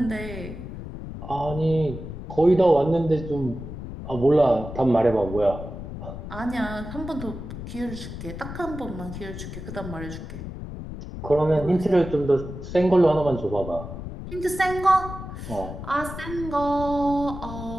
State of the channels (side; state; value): left; noise; rumble, 9 dB below the sound